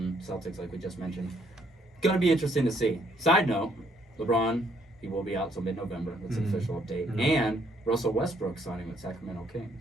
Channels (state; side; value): normal; both; correlation 0.68